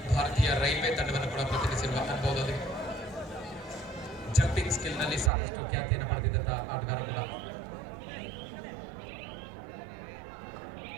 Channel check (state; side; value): drops out; left; at 5.3 s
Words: ಭಾರತೀಯ ರೈಲ್ವೆ ತಂಡವನ್ನು ಕೂಡ ಪ್ರತಿನಿಧಿಸಿರುವ ಅನುಭವದೊಂದಿಗೆ ಜಂಪಿಂಗ್ ಸ್ಕಿಲ್ ನಲ್ಲಿ ಸಾಕಷ್ಟು ಖ್ಯಾತಿಯನ್ನು ಪಡೆದಿದ್ದಂತಹ ಆಟಗಾರ ಕೂಡ.